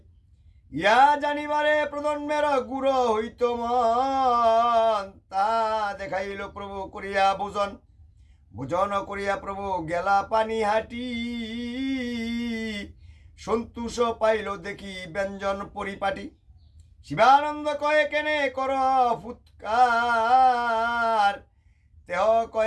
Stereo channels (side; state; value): both; identical; correlation 1.00